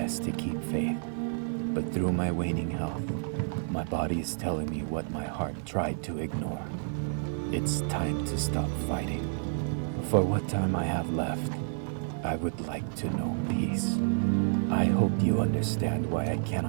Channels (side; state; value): left; silent; digital silence